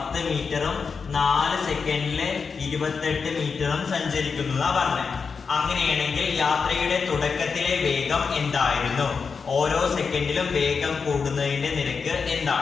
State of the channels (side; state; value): right; quieter; 5.4 dB